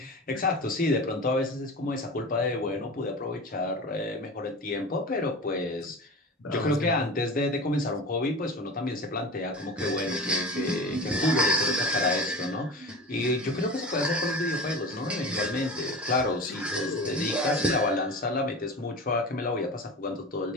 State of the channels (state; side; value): normal; both; correlation 0.32